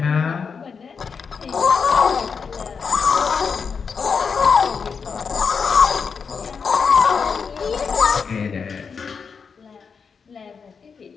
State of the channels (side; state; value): right; quieter; 5.8 dB